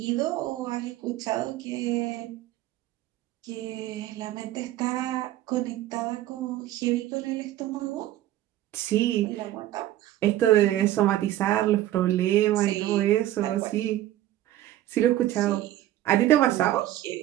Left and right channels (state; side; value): quieter; left; 13.9 dB